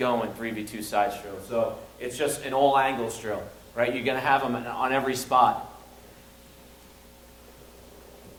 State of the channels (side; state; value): both; identical; correlation 1.00